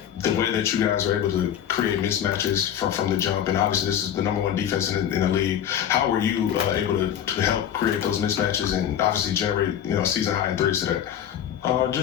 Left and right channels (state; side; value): quieter; right; 9.9 dB